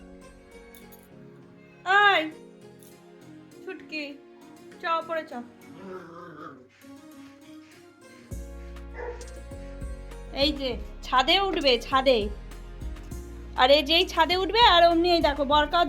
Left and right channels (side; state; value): both; identical; correlation 1.00